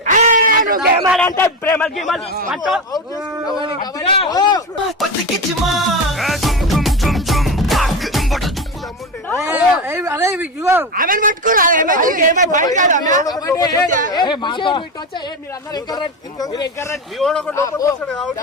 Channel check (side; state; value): both; normal; correlation 0.19